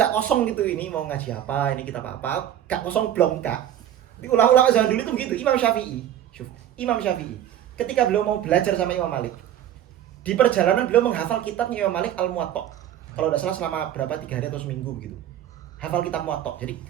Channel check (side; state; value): left; quieter; 11.1 dB